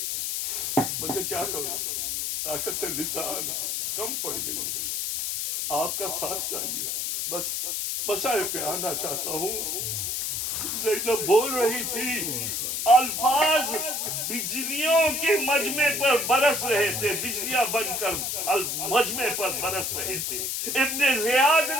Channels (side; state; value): left; noise; hiss, 1 dB below the sound